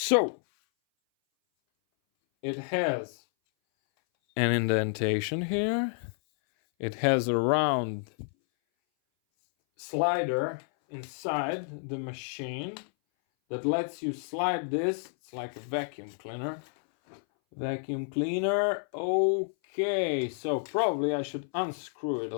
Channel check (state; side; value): silent; right; 58 dB below the other